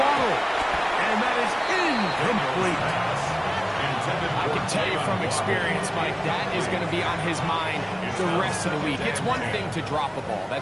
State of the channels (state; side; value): identical; both; correlation 1.00